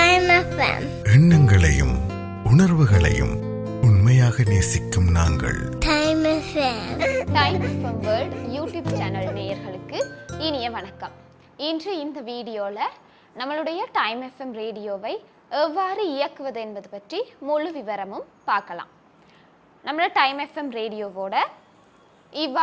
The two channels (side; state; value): both; identical; correlation 1.00